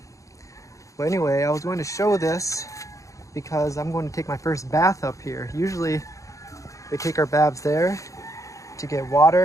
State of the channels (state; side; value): late; right; 0.15 ms